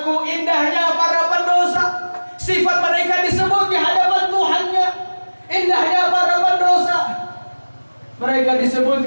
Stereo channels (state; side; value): inverted; both; correlation -1.00